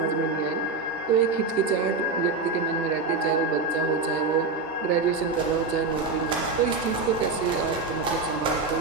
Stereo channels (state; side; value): quieter; left; 4.1 dB